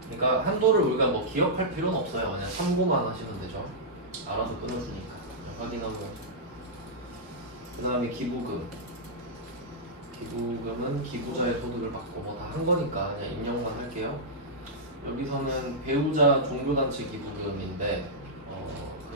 그러니까 한도를 우리가 뭐 기억할 필요는 없어요. 그냥 참고만 하시면 되죠. 알아서 끊어주니까. 확인하고. 그 다음에 기부금. 기부금은 기부자의 소득을 받고 뭐 다 한 거니까 그냥 입력만 할게요. 여기서는 배우자 종교단체 기부금인데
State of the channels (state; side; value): normal; both; correlation -0.11